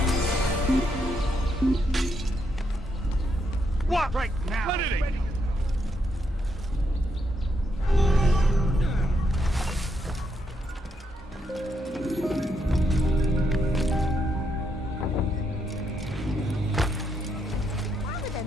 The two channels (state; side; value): normal; both; correlation 0.78